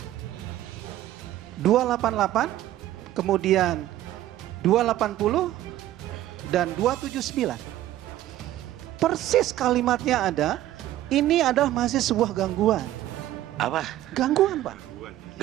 288, kemudian 280 dan 279. Persis kalimatnya ada. Ini adalah masih sebuah gangguan. Apa? Gangguan, Pak.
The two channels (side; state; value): left; quieter; 13.8 dB